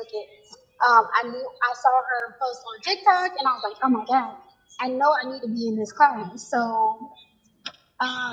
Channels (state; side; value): identical; both; correlation 1.00